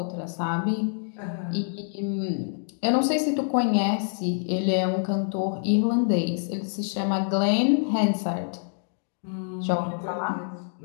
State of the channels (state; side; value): silent; right; digital silence